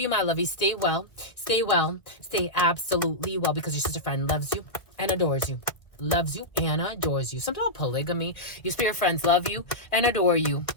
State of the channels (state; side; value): late; right; 1.5 ms